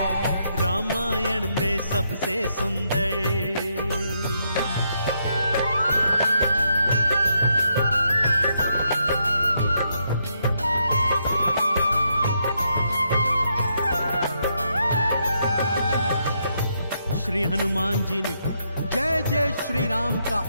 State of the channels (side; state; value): both; inverted; correlation -0.78